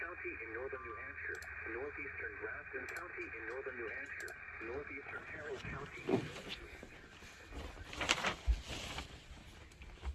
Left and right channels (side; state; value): both; identical; correlation 1.00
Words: in northern New Hampshire. Northeastern Grafton County in northern New Hampshire. Northeastern Carroll County.